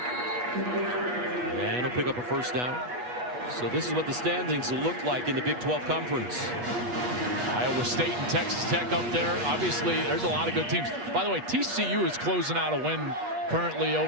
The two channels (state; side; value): late; left; 8.2 ms